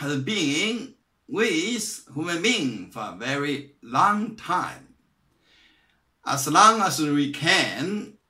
been with human being for a very long time. As long as we can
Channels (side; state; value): both; identical; correlation 1.00